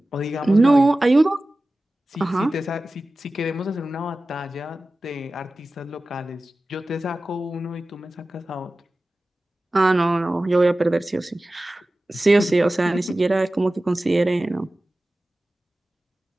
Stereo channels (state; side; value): normal; both; correlation 0.96